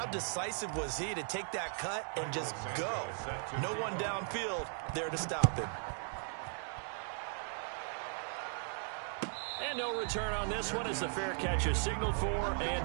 decisive was he to take that cut and just go. No one downfield there to stop him. And no return on this one as the fair catch is signaled for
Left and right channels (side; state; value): left; silent; 53 dB below the other